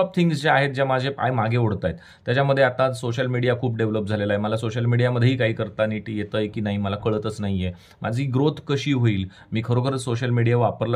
थिंग्स ज्या आहेत, ज्या माझे पाय मागे ओढत आहेत. त्याच्यामध्ये आता सोशल मीडिया खूप डेव्हलप झालेला आहे. मला सोशल मीडियामध्येही काही करता नीट येतंय की नाही मला कळतच नाहीये. माझी ग्रोथ कशी होईल, मी खरोखरच सोशल मीडिया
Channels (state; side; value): identical; both; correlation 1.00